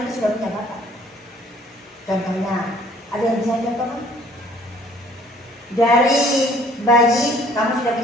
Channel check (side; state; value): both; normal; correlation 0.57